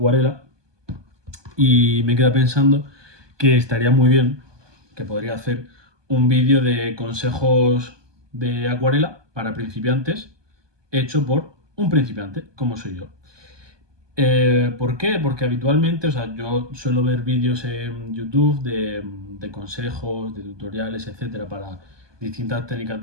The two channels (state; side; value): late; left; 1.2 ms